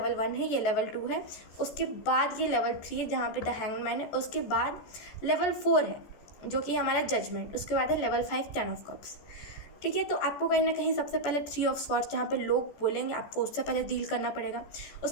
1 है, ये लेवल 2 है, उसके बाद ये लेवल 3 है जहाँ पे द हैंगमैन है, उसके बाद लेवल 4 है जो कि हमारा जजमेंट, उसके बाद है लेवल 5 10 ऑफ कप्स। ठीक है, तो आपको कहीं ना कहीं सबसे पहले 3 ऑफ स्वॉर्ड्स जहाँ पे लोग बोलेंगे, आपको उससे पहले डील करना पड़ेगा।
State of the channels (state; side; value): late; right; 14 ms